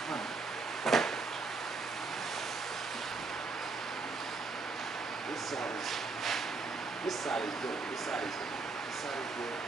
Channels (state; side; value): quieter; left; 4.0 dB